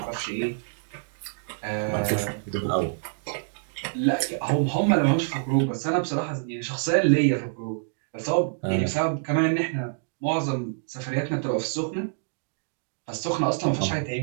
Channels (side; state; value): left; silent; digital silence